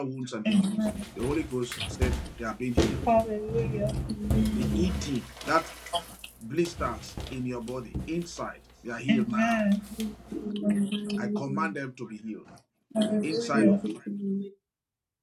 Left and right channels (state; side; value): identical; both; correlation 1.00